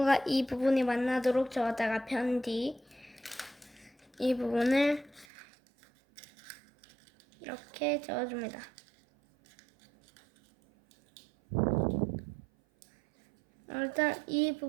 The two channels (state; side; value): drops out; left; at 5.2 s